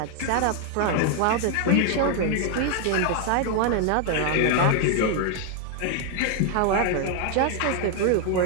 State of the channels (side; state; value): both; different; correlation 0.00